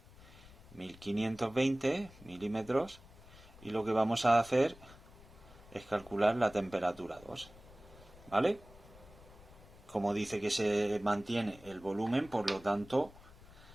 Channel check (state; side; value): noise; left; rumble, 21 dB below the sound